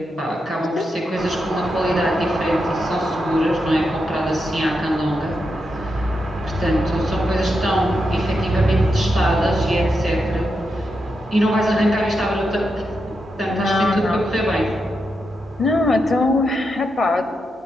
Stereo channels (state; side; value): normal; both; correlation 0.85